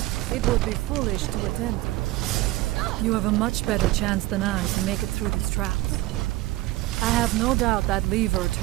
It would be foolish to attempt it. You have a much better chance than I to make it through these traps. I have no doubt that lever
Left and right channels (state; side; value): quieter; left; 18.0 dB